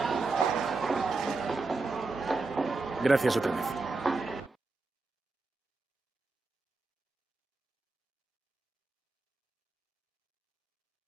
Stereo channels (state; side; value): quieter; left; 3.7 dB